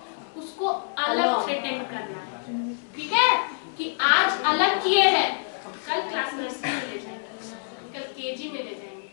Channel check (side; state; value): right; silent; digital silence